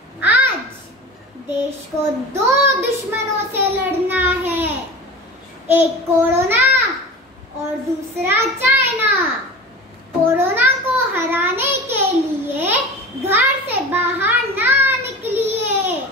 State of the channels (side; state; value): both; normal; correlation 0.33